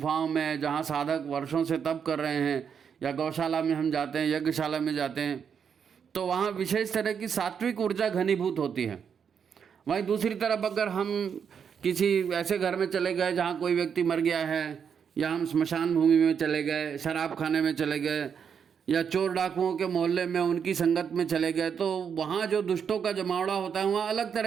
में जहाँ साधक वर्षों से तप कर रहे हैं, या गौशाला में हम जाते हैं, यज्ञशाला में जाते हैं, तो वहाँ विशेष तरह की सात्विक ऊर्जा घनीभूत होती है। वहीं दूसरी तरफ अगर हम किसी ऐसे घर में चले गए जहाँ कोई व्यक्ति मर गया है, या हम स्मशान भूमि में चले गए, शराब खाने में चले गए, या चोर डाकुओं के मोहल्ले में उनकी संगत में चले गए, तो वहाँ जो दुष्टों का जमावड़ा होता है वहाँ अलग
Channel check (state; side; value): quieter; left; 7.2 dB